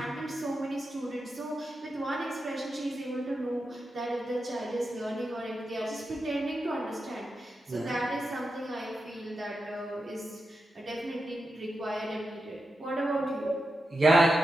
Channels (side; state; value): both; normal; correlation 0.89